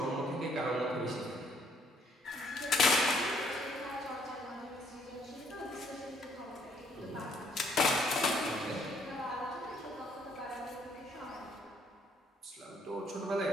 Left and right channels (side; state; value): both; normal; correlation 0.66